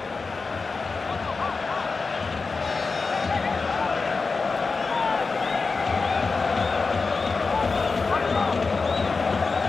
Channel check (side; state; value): right; quieter; 4.3 dB